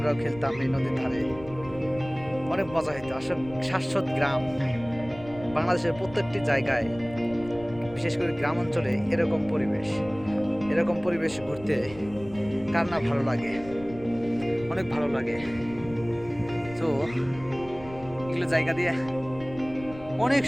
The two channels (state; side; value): noise; left; rumble, 17 dB below the sound